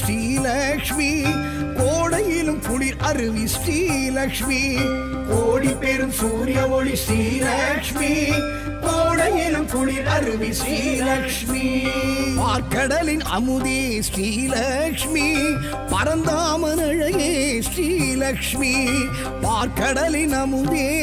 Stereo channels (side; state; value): both; identical; correlation 1.00